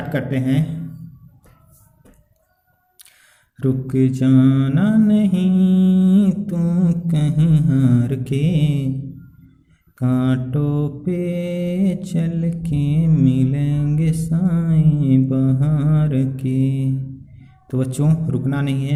करते हैं। रुक जाना नहीं तू कहीं हार के, कांटों पे चल के मिलेंगे साए बहार के। तो बच्चों रुकना नहीं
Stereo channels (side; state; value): both; identical; correlation 1.00